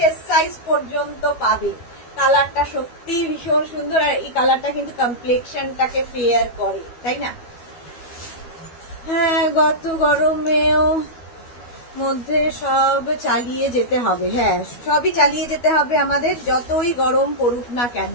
সাইজ পর্যন্ত পাবে। কালারটা সত্যি ভীষণ সুন্দর, আর এই কালারটা কিন্তু কমপ্লেক্সনটাকে ফেয়ার করে, তাই না? হ্যাঁ, গত গরমেও মধ্যে সব চালিয়ে যেতে হবে। হ্যাঁ, সবই চালিয়ে যেতে হবে আমাদের, যতই গরম পড়ুক না কেন।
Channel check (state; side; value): late; right; 12 ms